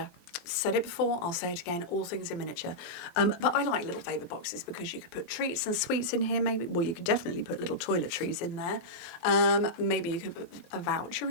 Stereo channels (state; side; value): late; right; 23 ms